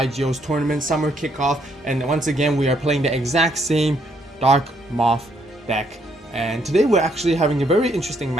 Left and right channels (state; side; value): normal; both; correlation 0.71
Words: tournament summer kickoff, and once again we are playing the exact same Dark Moth deck. And today we're actually having a very interesting